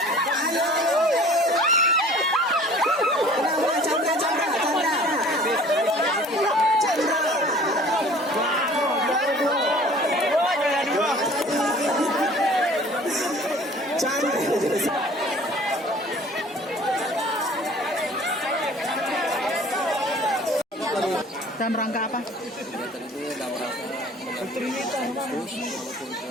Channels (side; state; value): both; normal; correlation 0.49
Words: Dalam rangka apa? Kegiatan itu dalam rangka Agustus maupun